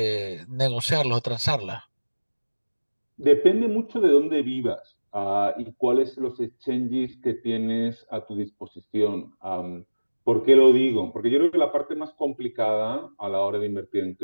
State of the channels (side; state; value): both; inverted; correlation -1.00